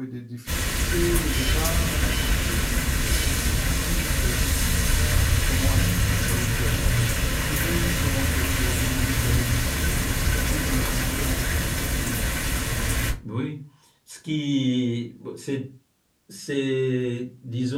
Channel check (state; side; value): identical; both; correlation 1.00